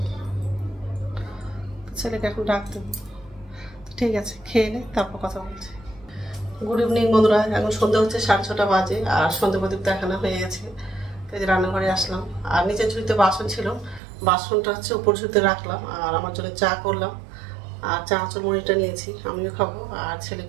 ছেলেকে এখন ডাক দেবো। ঠিক আছে, খেয়ে নে, তারপর কথা বলছি। গুড ইভিনিং বন্ধুরা, এখন সন্ধ্যা হচ্ছে 6:30 বাজে, আর সন্ধ্যা প্রদীপ দেখানো হয়ে গেছে। তো যে রান্নাঘরে আসলাম, আর নিচের ঝুড়িতে বাসন ছিল, বাসনটা হচ্ছে উপর ঝুড়িতে রাখলাম, আর আমার জন্য চা করলাম, আর চানাচুর মুড়িটা নিয়েছি, আমিও খাবো আর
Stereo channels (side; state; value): left; drops out; at 14.0 s